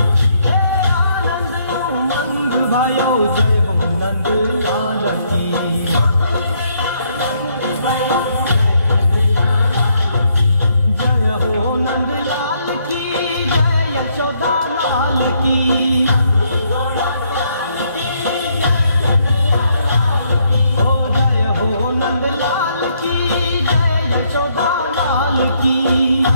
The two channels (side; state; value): both; inverted; correlation -0.72